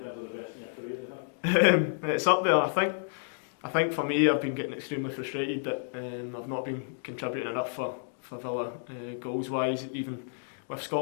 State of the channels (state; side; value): silent; right; digital silence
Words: of the best in your career, do you think? It's up there. I think for me, I've been getting extremely frustrated that I've not been contributing enough for Villa goals wise. Even with